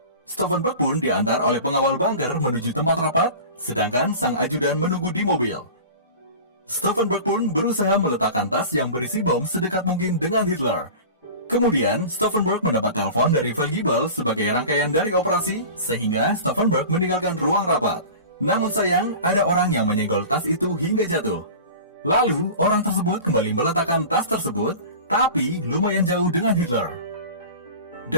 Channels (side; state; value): both; inverted; correlation -0.36